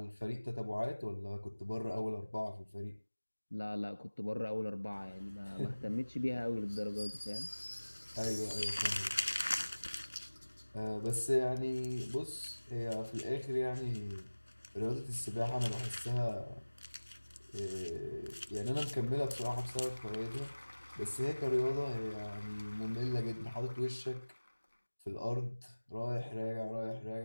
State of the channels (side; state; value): both; inverted; correlation -1.00